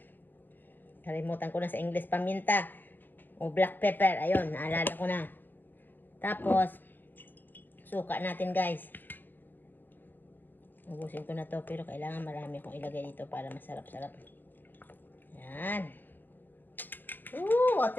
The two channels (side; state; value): right; late; 0.091 ms